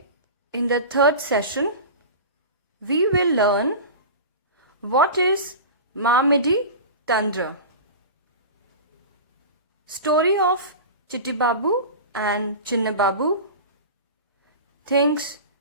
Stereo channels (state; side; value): inverted; both; correlation -0.31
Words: in the third session we will learn what is Mamidi Tandra. Story of Chitti Babu and Chinna Babu. Things